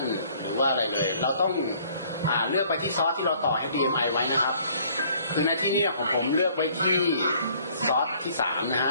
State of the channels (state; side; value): inverted; both; correlation -0.59